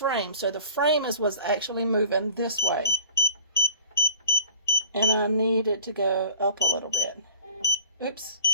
So the frame is what's actually moving this way. And I need it to go up a little bit. Oops,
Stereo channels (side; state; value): both; inverted; correlation -0.44